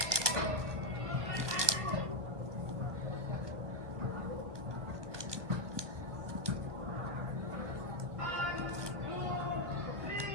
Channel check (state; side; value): late; left; 1.2 ms